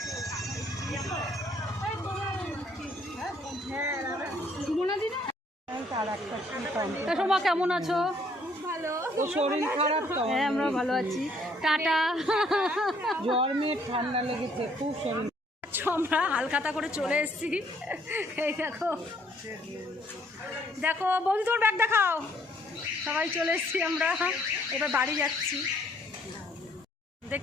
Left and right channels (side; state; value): both; normal; correlation 0.65